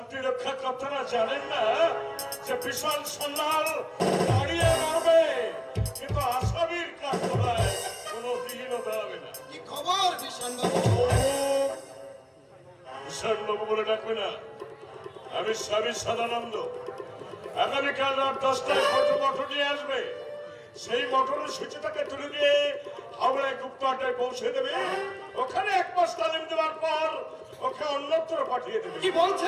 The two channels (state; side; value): identical; both; correlation 1.00